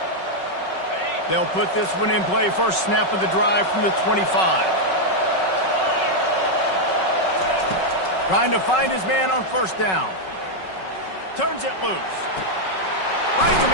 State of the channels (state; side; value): late; right; 5.4 ms